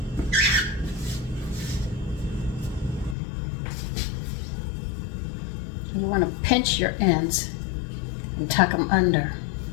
You want to pinch your ends and tuck them under.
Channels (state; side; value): drops out; right; at 3.2 s